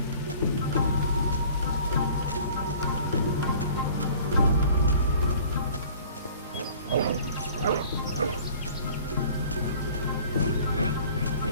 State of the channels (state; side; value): inverted; both; correlation -0.49